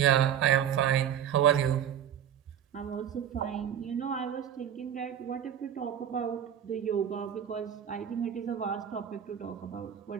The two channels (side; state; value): left; quieter; 9.4 dB